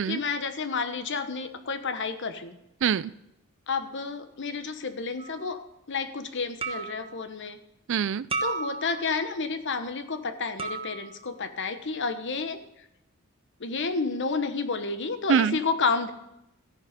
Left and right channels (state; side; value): normal; both; correlation -0.05